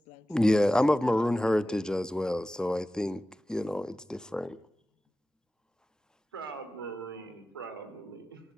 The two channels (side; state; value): both; normal; correlation 0.95